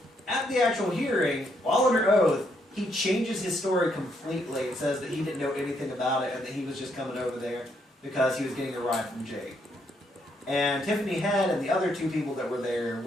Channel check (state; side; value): normal; both; correlation 0.74